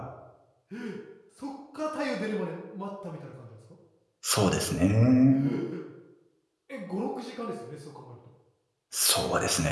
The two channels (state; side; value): identical; both; correlation 1.00